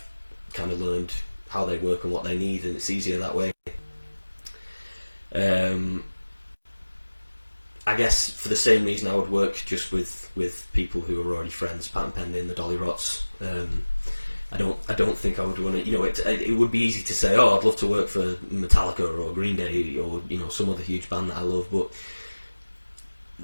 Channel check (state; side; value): inverted; both; correlation -1.00